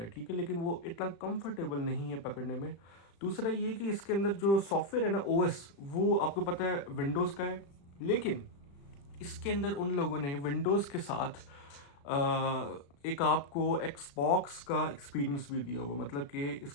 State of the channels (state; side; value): late; right; 35 ms